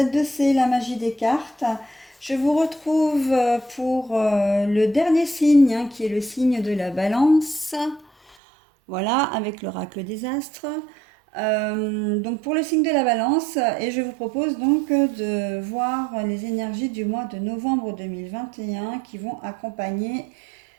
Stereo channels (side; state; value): left; drops out; at 8.3 s